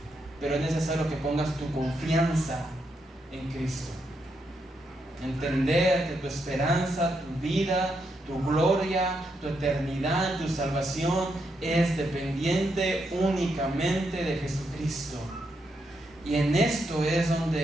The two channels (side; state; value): both; normal; correlation 0.81